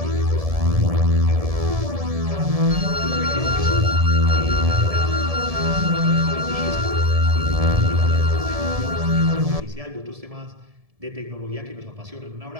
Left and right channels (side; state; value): left; late; 1.7 ms